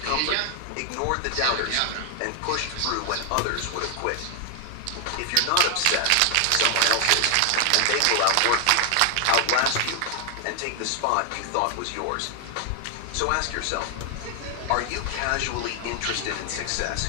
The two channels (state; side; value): different; both; correlation 0.00